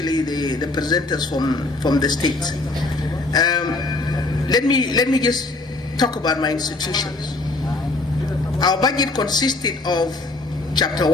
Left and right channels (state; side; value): quieter; right; 3.2 dB